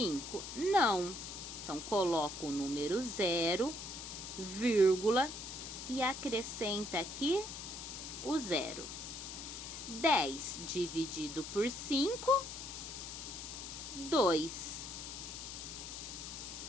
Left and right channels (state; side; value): noise; left; hiss, 8 dB below the sound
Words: Não. Então, coloco o número 0, vírgula, e acrescenta aqui o 0. 10 dividido por 5, 2.